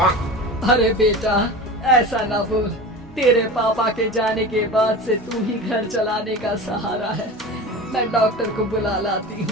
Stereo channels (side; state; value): both; normal; correlation 0.32